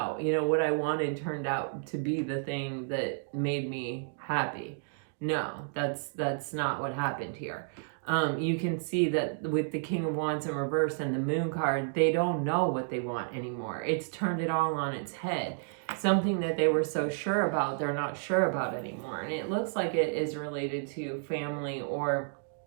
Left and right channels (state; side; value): silent; left; digital silence